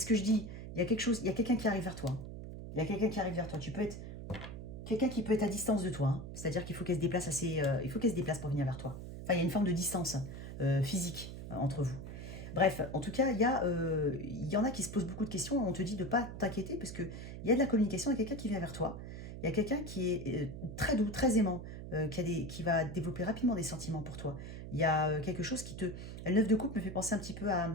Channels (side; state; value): right; noise; hum, 9 dB below the sound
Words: que je dis. Il y a quelque chose, il y a quelqu'un qui arrive vers toi. Il y a quelqu'un qui arrive vers toi. Tu peux être... Quelqu'un qui peut être à distance de toi. Hein. C'est-à-dire qu'il faut qu'elle se déplace assez... il faut qu'elle se déplace pour venir vers toi. Enfin, il y a une forme de distance physique entre vous. Bref, en tout cas, il y en a qui se posent beaucoup de questions. On te dit de ne pas t'inquiéter parce qu'il y a de la communication, il y a quelqu'un qui vient vers toi. Il y a quelqu'un qui est très doux, très aimant, qui va développer rapidement des sentiments pour toi. Il y a quelque chose qui te... Le 9 de coupe me fait penser un petit peu